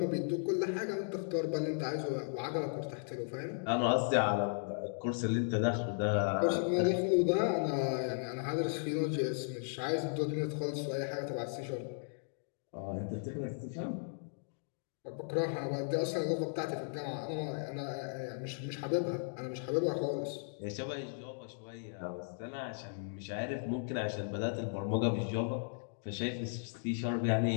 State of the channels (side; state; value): right; silent; digital silence